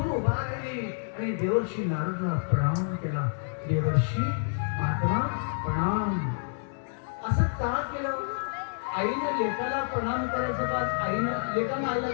उभा राहिली आणि देवर्षी नारदाला प्रणाम केला. देवर्षी महात्मा प्रणाम. असं का केलं? आईने लेकाला प्रणाम करायचं का आईनं लेकानं आईला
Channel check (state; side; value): silent; right; 59 dB below the other